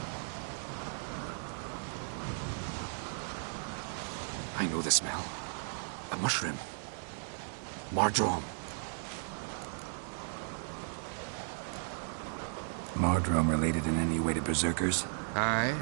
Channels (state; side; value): silent; left; digital silence